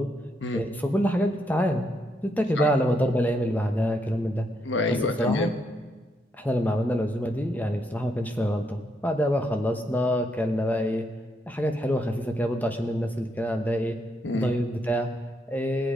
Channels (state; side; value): normal; both; correlation 0.78